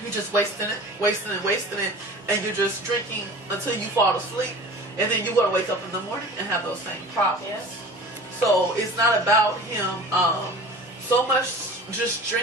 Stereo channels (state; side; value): normal; both; correlation 0.40